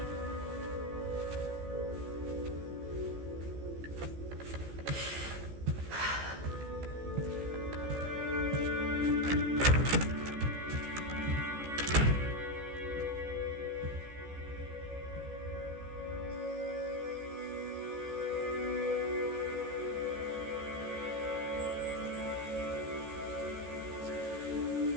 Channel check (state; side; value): late; left; 14 ms